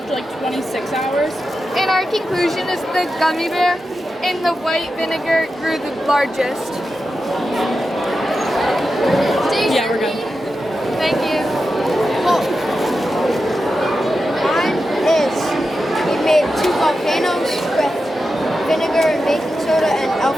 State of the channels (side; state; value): both; normal; correlation 0.90